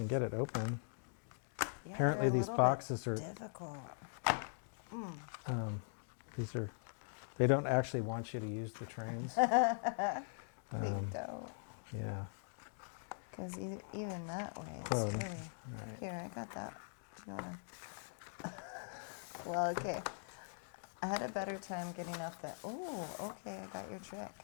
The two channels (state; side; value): silent; right; digital silence